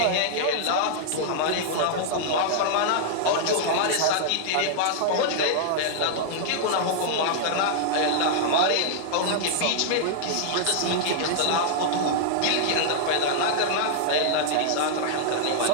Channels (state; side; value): different; both; correlation -0.01